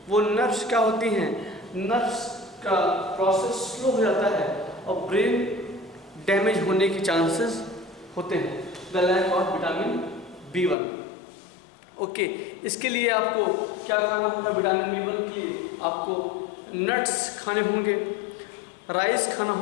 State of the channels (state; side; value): drops out; right; at 10.8 s